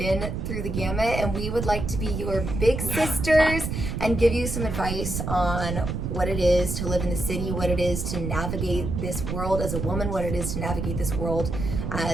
through the gamut, and we would like to be your big sisters and give you some advice on what it is to live in the city, what it is to navigate this world as a woman, what it is to navigate this world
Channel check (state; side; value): noise; right; rumble, 3 dB below the sound